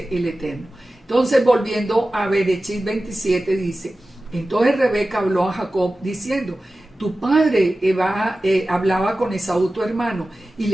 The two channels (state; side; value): normal; both; correlation 0.95